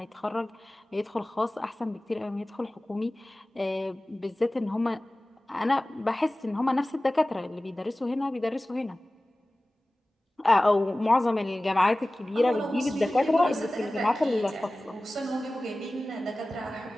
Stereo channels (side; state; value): both; normal; correlation 0.97